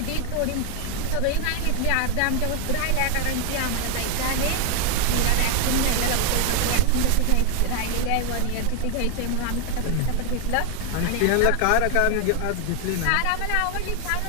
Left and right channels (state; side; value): different; both; correlation 0.01